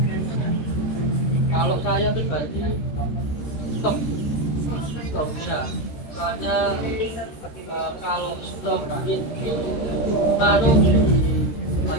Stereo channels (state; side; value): late; right; 13 ms